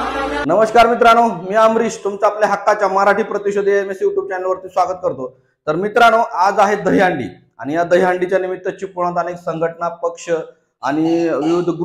नमस्कार मित्रांनो, मी अमरीश तुमचं आपल्या हक्काच्या मराठी प्रतिशोधी एमएस YouTube चॅनलवरती स्वागत करतो। तर मित्रांनो, आज आहे दहीहंडी आणि या दहीहंडीच्या निमित्त चिपळूणात अनेक संघटना, पक्ष आणि विविध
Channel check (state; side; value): identical; both; correlation 1.00